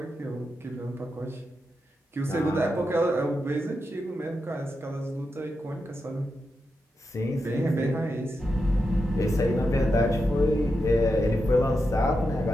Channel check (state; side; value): normal; both; correlation 0.87